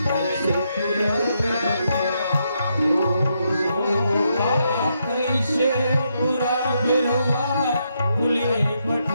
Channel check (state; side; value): inverted; both; correlation -0.79